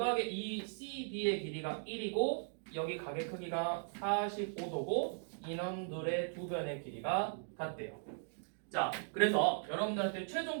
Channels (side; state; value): left; silent; digital silence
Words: 이 CD의 길이가 1이고 여기 각의 크기가 45도고 인원들의 두 변의 길이가 같대요. 자, 그래서 여러분들한테